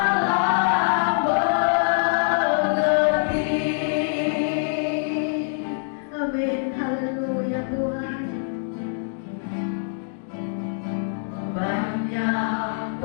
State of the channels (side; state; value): right; silent; digital silence